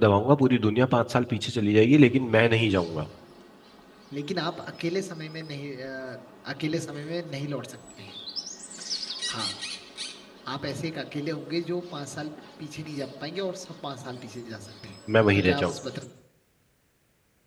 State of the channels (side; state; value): both; identical; correlation 1.00